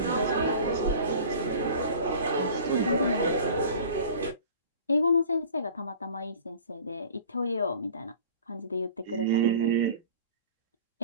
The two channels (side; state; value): both; inverted; correlation -0.43